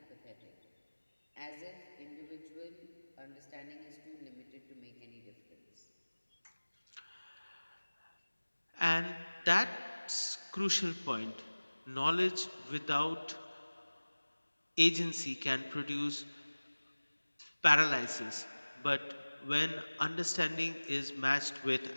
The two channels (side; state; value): both; inverted; correlation -1.00